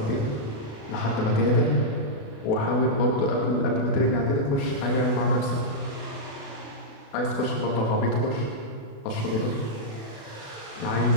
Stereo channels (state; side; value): late; right; 36 ms